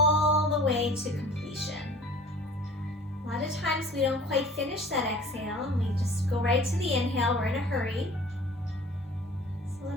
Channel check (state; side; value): normal; both; correlation 0.46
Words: the way to completion. A lot of times we don't quite finish that exhale and we just go right to the inhale. We're in a hurry.